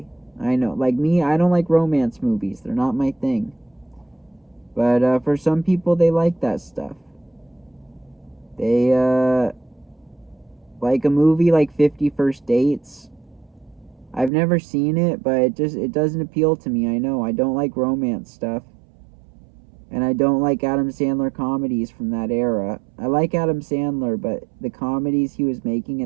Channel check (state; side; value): drops out; left; at 14.3 s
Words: I know, like me, I don't like romance movies. They're not my thing. But for some people, they like that stuff. They like a movie like 50 First Dates. I've never seen it, but it doesn't appeal to me. I know I don't like romance stuff, and I don't like Adam Sandler comedies from that era. I like Adam Sandler, but the comedies he was making